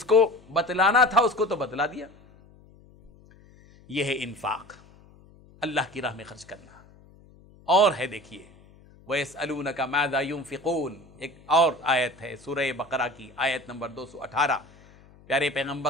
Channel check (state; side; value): noise; left; hum, 26 dB below the sound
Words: کو بتلانا تھا اس کو تو بتلا دیا۔ یہ ہے انفاق، اللہ کی راہ میں خرچ کرنا۔ اور ہے دیکھیے وَيَسْأَلُونَكَ مَاذَا يُنْفِقُونَ، ایک اور آیت ہے سورہ بقرہ کی آیت نمبر 218۔ پیارے